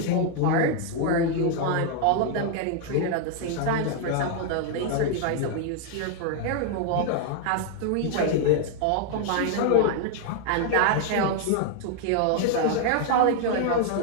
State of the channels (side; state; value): both; different; correlation 0.00